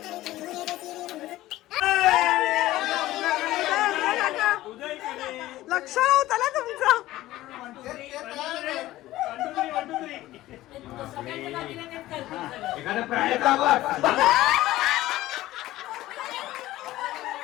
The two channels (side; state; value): right; quieter; 16.0 dB